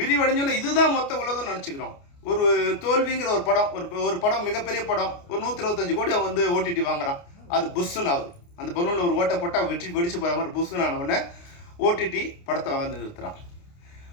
இதுதான் மொத்த உலகம் நினச்சிக்கிறோம். ஒரு தோல்விங்கிற ஒரு படம், ஒரு படம் மிகப்பெரிய படம், ஒரு 125 கோடி அவன் வந்து ஓடிடி வாங்குறான். அது புஷ்ஷுன்னு ஆகுது. அந்த பலூனில் ஒரு ஓட்டை போட்டால் வெடிச்சு போகிற மாதிரி புஷ்ஷுன்னு ஆனவுடனே ஓடிடி படத்தை வந்து நிறுத்துகிறான்.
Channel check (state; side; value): late; right; 29 ms